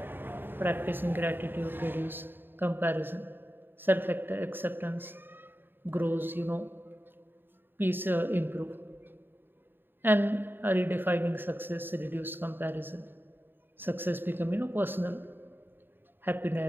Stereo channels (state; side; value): late; left; 0.097 ms